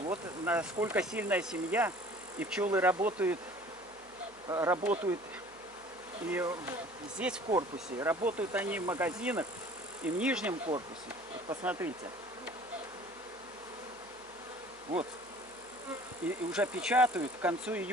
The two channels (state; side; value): noise; right; hum, 28 dB below the sound